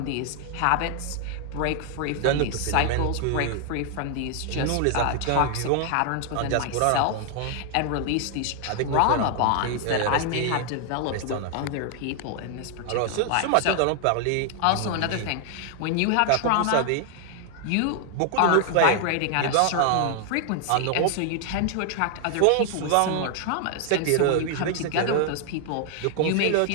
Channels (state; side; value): different; both; correlation 0.00